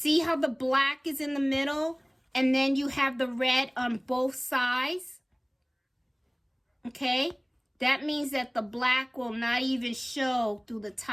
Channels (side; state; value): both; identical; correlation 1.00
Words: how the black is in the middle and then you have the red on both sides? Okay? That means that the black will not even show through the